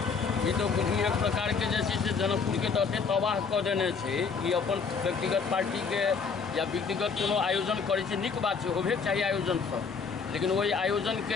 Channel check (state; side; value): quieter; right; 5.4 dB